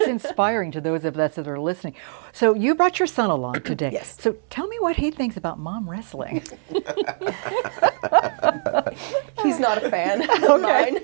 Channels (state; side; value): silent; left; digital silence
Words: inspiring to those of us that are listening. So you brought your son along today. Yes. So tell me what he thinks about mom wrestling. He's not a fan of mine.